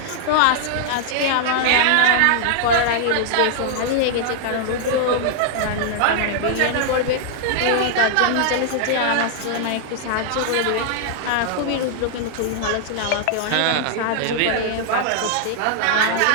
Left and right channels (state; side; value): different; both; correlation -0.01